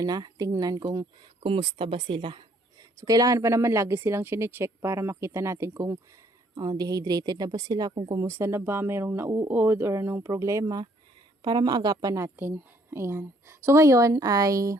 na tingnan kung kumusta ba sila. So kailangan pa naman lagi silang chine-check para makita natin kung dehydrated na ba sila, kung kumusta na ba, mayroong nauod or anong problema para maagapan natin. Ayan. So, ngayon ay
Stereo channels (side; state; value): both; normal; correlation 0.65